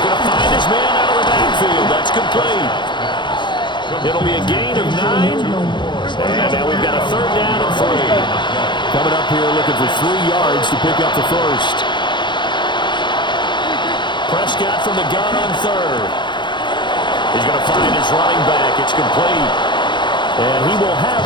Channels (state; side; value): late; right; 0.22 ms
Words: to find his man out of the backfield. That's complete. It'll be a gain of 9. And now we've got a third down and 3. Coming up here looking for 3 yards to pick up the first. Prescott from the gun on third. He's going to find his running back. It's complete. And he will have